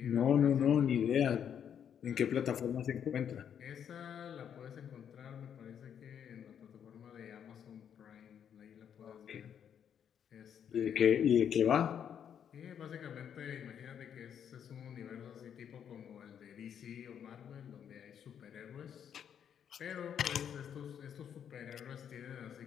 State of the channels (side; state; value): right; quieter; 8.6 dB